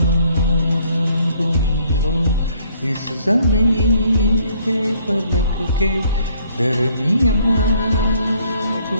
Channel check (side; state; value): both; inverted; correlation -0.64